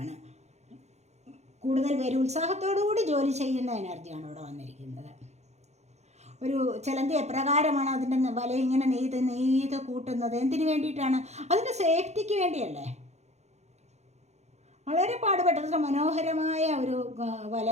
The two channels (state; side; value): late; left; 0.32 ms